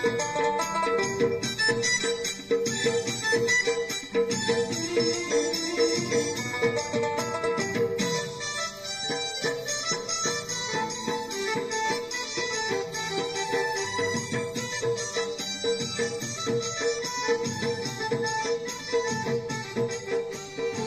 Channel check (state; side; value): identical; both; correlation 1.00